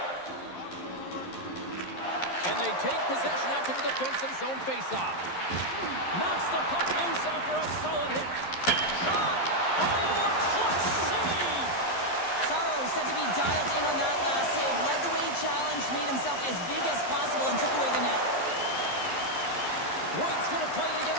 And they take possession after the defensive zone faceoff. Knocks the puck loose after a solid hit. Shot! Oh, a clutch save! Sorrow said to be dialed in on that last save. Led the way he challenged, made himself as big as possible, and took away the net. Wood's going to play it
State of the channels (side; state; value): right; late; 11 ms